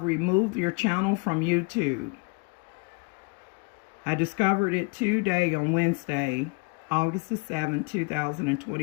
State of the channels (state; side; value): quieter; right; 29.9 dB